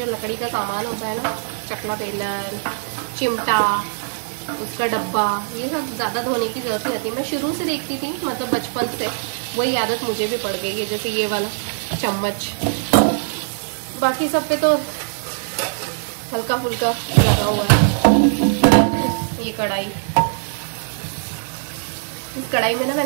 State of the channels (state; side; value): silent; left; 60 dB below the other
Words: लकड़ी का सामान होता है ना, चकला बेलन, चिमटा, उसका डब्बा, ये सब ज़्यादा धोने की ज़रूरत नहीं होती। मैं शुरू से देखती थी, मतलब बचपन से वही आदत मुझे भी पड़ गई है। जैसे ये वाला चम्मच, बाकी सब पे तो हल्का फुल्का लगा हुआ है। ये कढ़ाई, इस कढ़ाई में ना